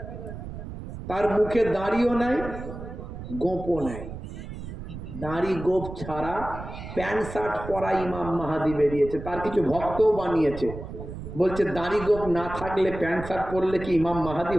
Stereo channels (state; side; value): noise; right; rumble, 10 dB below the sound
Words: তার মুখে দাড়িও নাই, গোপও নাই, দাড়ি গোপ ছাড়া প্যান্ট শার্ট পরা ইমাম মাহাদি বেরিয়েছে। তার কিছু ভক্তও বানিয়েছে, বলছে দাড়ি গোপ না থাকলে প্যান্ট শার্ট পরলে কি ইমাম মাহাদি